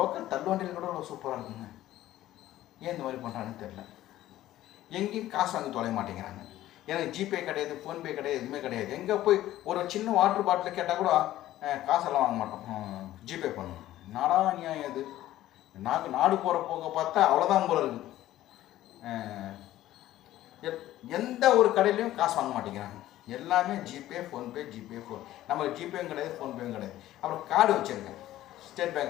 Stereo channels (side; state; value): right; quieter; 14.3 dB